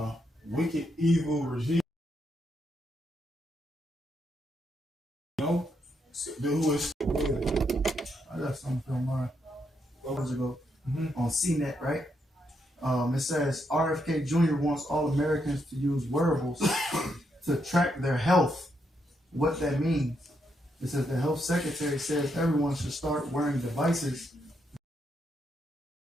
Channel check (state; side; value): normal; both; correlation 0.79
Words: wicked, evil regime. You know, who is? I got something from mine. What was it go? On CNET, right? It says RFK Jr. wants all Americans to use wearables to track their health. What that means? It says the health secretary says everyone should start wearing devices.